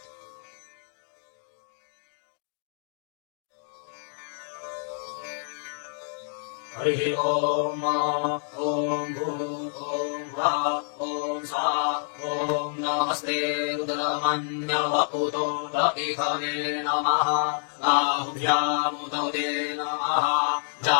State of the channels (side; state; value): right; silent; digital silence